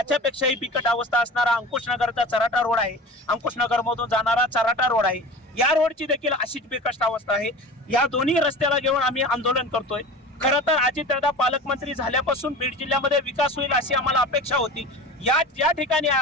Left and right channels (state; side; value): normal; both; correlation 0.35